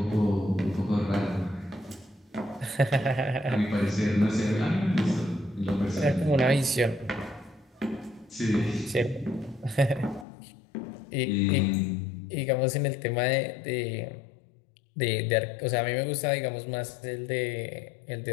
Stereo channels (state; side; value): drops out; right; at 10.2 s